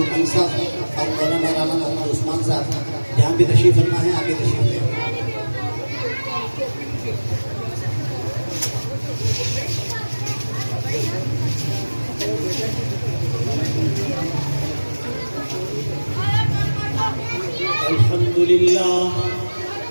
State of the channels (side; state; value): both; inverted; correlation -1.00